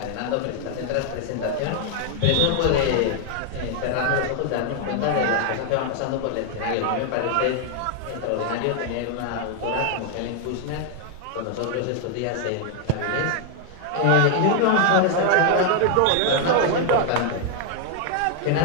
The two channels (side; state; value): both; different; correlation 0.00